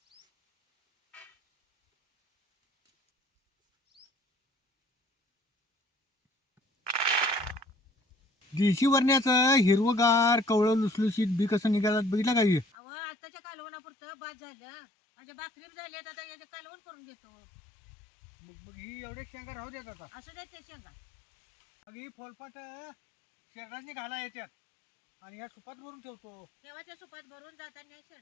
देशी वरण्याचं हिरवगार कवळं लुसलुशीत बी कसं निघालात बघितलं का हे? अव आताच्या कालवणापुरतं बाद झालं. माझ्या भाकरी बी झाली आता याचे कालवण करून घेतो. मग मग ही एवढे शेंगा राहू देत आता. असं देत ते शेंगा. मग ही फोलपाट शेरडाने घाला येतात आणि या सुपात भरून ठेवतो. तेव्हाच्या सुपात भरून जाताना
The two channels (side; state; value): right; drops out; at 12.7 s